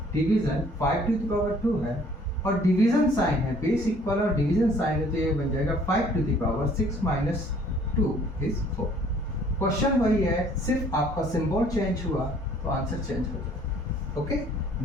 division 5 to the power 2 है और डिवीजन साइन है, बेस इक्वल और डिवीजन साइन है, तो ये बन जाएगा 5 to the power 6 minus 2 is 4। Question वही है, सिर्फ आपका सिंबल चेंज हुआ तो आंसर चेंज हो जाएगा। ओके,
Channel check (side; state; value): both; normal; correlation 0.57